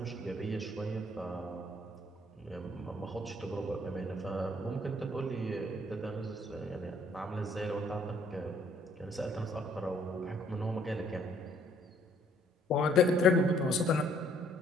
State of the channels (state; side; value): normal; both; correlation 0.63